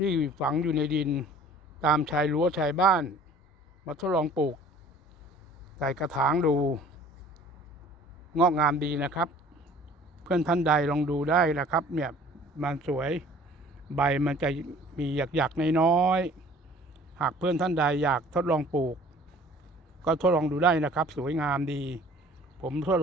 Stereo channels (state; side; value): normal; both; correlation 0.50